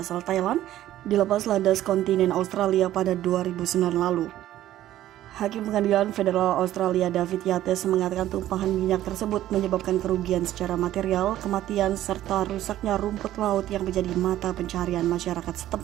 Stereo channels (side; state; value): left; quieter; 13.4 dB